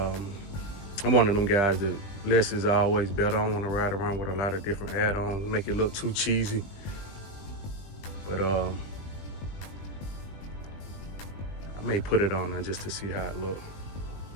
one of them guys that less is always better. I don't want to ride around with a lot of different add-ons, make it look too cheesy. But I may put it on there just to see how it looks.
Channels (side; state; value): right; late; 20 ms